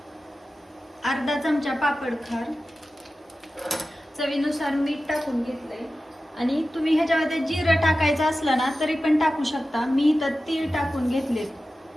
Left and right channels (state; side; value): normal; both; correlation 0.94